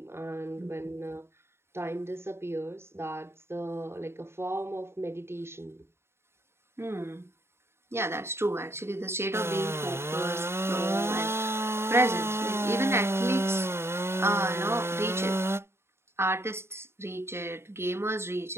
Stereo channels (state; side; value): late; left; 0.12 ms